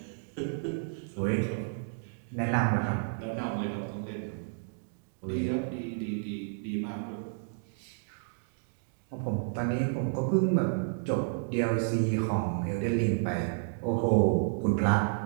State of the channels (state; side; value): silent; left; digital silence